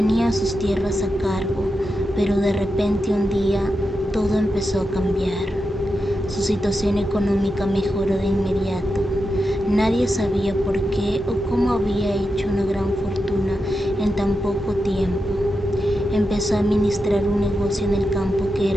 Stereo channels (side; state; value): both; normal; correlation 0.88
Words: sus tierras a cargo, pero de repente un día todo empezó a cambiar. Su situación económica mejoró de inmediato. Nadie sabía por qué o cómo había hecho una gran fortuna en tan poco tiempo. Empezó a administrar un negocio en el campo que